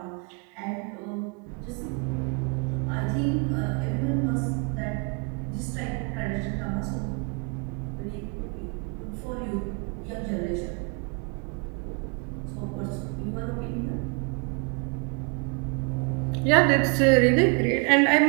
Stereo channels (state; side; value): quieter; left; 34.0 dB